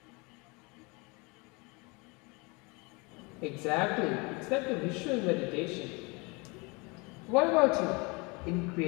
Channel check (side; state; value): right; quieter; 28.1 dB